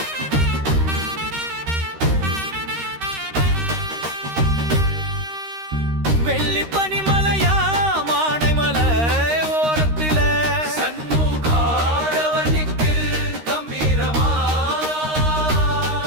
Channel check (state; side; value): late; left; 13 ms